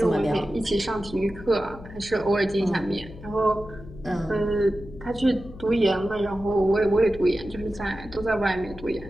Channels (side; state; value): left; noise; hum, 16 dB below the sound